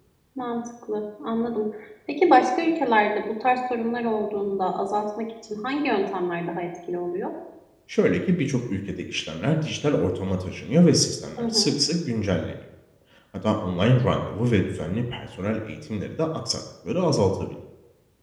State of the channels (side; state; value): both; identical; correlation 1.00